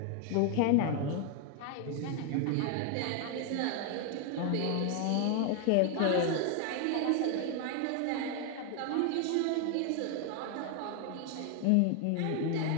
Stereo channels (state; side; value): different; both; correlation 0.01